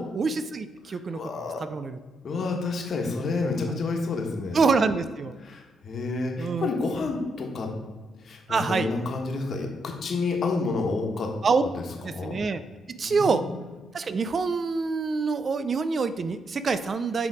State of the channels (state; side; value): normal; both; correlation 0.79